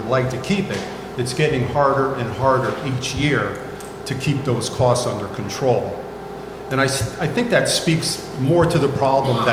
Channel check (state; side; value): identical; both; correlation 1.00